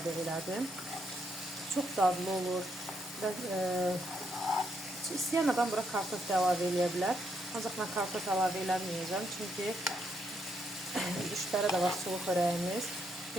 elədim. Çox dadlı olur və istəyən adam bura kartof da əlavə eləyə bilər. Ancaq mən kartof əlavə eləməyəcəm, çünki 3 dərə də var sulu xörəyimiz.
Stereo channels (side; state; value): both; normal; correlation 0.77